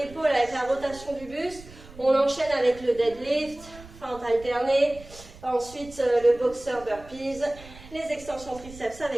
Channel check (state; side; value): noise; right; rumble, 19 dB below the sound